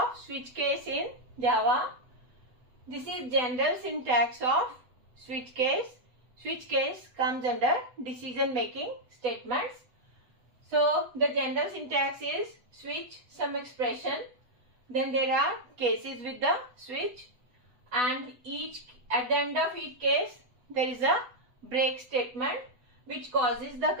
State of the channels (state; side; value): late; left; 8.0 ms